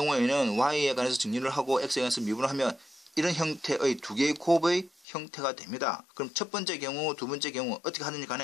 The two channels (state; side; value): drops out; right; at 4.9 s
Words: y에 관해서 정리를 하고 x에 관해서 미분을 하면 이런 형태의 두 개의 곱의 형태가 됩니다. 그럼 첫 번째 경우, 두 번째 경우 어떻게 하는지